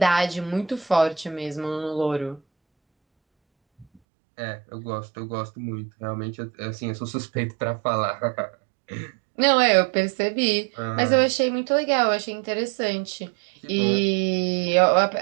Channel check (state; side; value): drops out; left; at 4.0 s